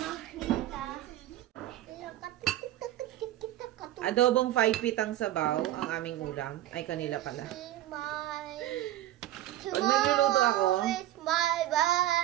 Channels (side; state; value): left; quieter; 14.0 dB